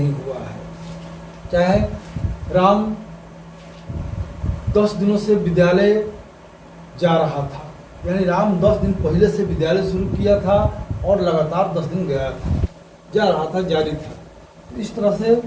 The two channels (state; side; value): identical; both; correlation 1.00